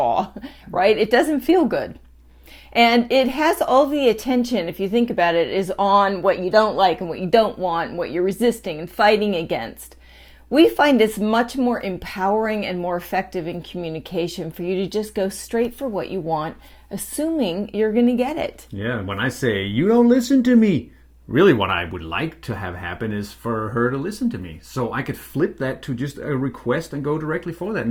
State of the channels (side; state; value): both; identical; correlation 1.00